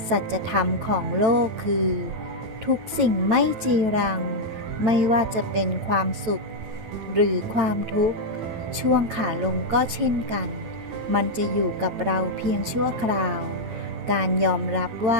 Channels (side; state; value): left; late; 9.3 ms